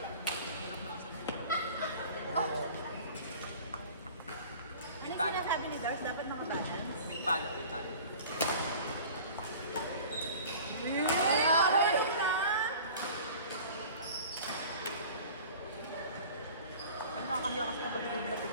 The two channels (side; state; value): both; inverted; correlation -0.43